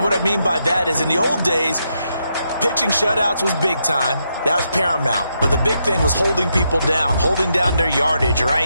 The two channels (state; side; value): inverted; both; correlation -0.81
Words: what I mean by that is in the old days, pitching shutouts was big time. That was paramount. But the big thing was holding people down, holding down their yardage,